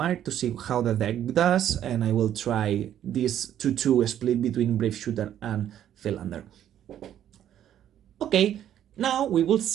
to see how the deck does, and I will try this 2-2 split between Brave Shooter and Philander. Okay, now we will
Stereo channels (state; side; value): quieter; left; 10.8 dB